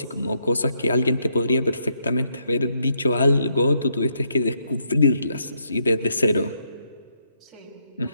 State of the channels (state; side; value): inverted; both; correlation -0.77